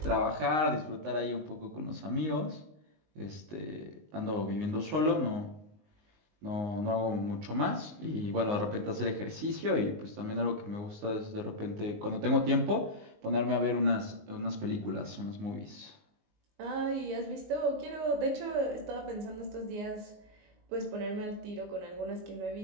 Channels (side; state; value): left; late; 19 ms